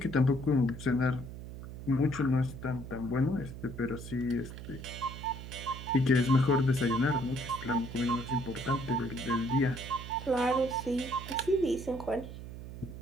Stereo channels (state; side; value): noise; right; hum, 11 dB below the sound